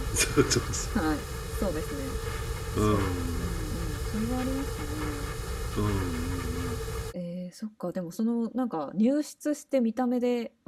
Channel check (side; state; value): both; identical; correlation 1.00